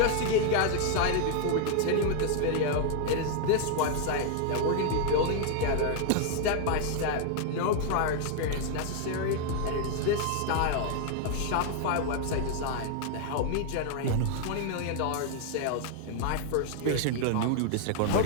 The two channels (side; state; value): both; different; correlation 0.00